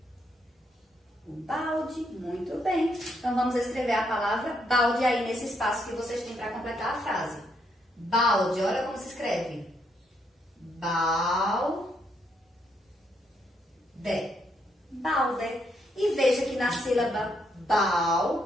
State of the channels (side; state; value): both; normal; correlation 0.75